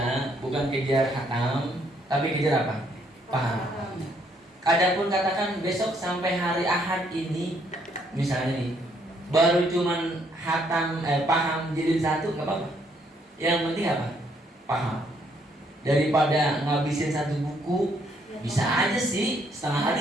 bukan kejar hatam, tapi kejar apa? Paham. Adapun katakan besok sampai hari Ahad ini, misalnya nih, baru cuman hatam, paham jilid 1 nggak apa-apa. Yang penting apa? Paham. Daripada ngabisin satu buku, bisa aja sih setengah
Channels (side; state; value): both; normal; correlation 0.69